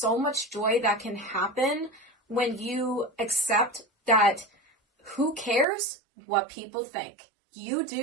much joy that can happen when you accept that who cares what people think. You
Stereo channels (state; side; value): drops out; left; at 5.7 s